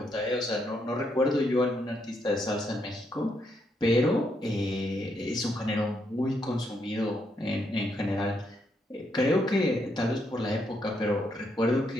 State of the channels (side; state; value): both; normal; correlation 0.77